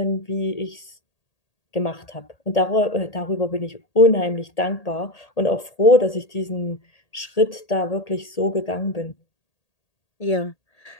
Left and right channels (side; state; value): right; late; 1.8 ms